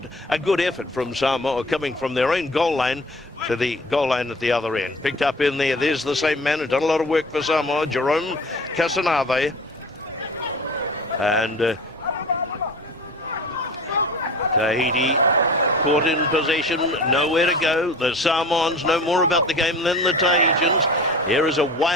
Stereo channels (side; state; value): both; normal; correlation 0.41